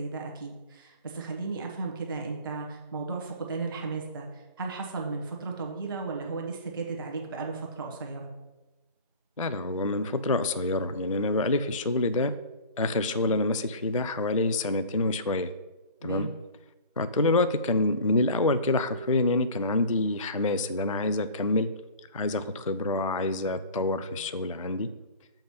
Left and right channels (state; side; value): inverted; both; correlation -0.40